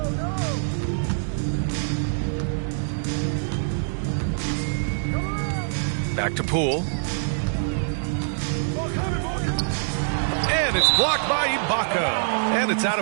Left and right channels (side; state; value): left; silent; 62 dB below the other